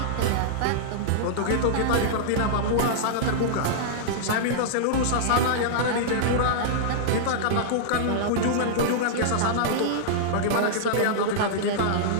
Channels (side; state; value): both; different; correlation -0.02